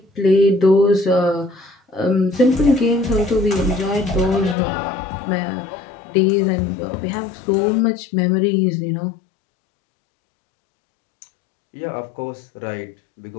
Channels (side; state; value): right; drops out; at 4.5 s